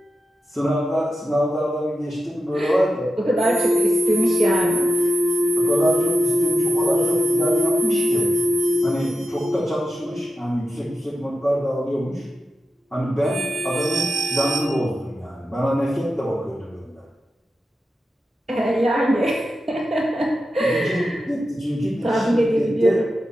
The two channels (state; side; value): normal; both; correlation 0.90